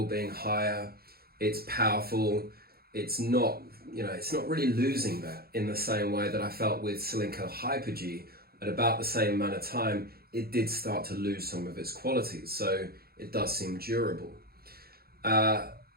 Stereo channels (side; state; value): left; late; 0.44 ms